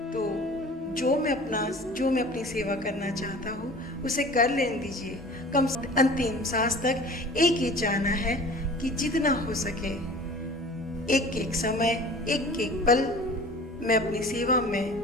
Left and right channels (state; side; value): normal; both; correlation 0.43